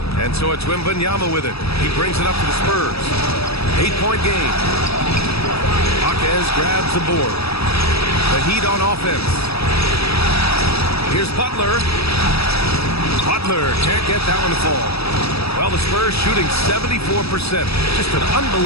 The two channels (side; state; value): right; late; 0.78 ms